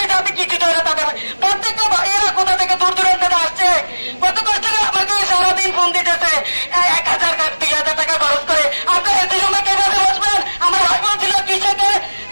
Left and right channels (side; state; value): both; inverted; correlation -1.00